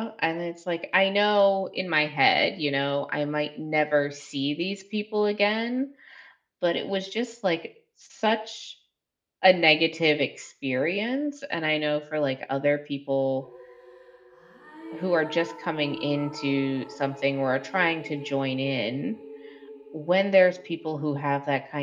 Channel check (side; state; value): both; identical; correlation 1.00